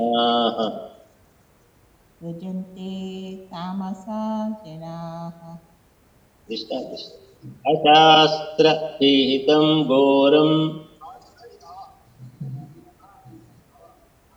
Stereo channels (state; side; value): identical; both; correlation 1.00